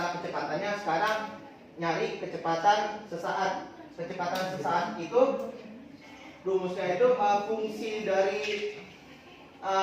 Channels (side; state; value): both; identical; correlation 1.00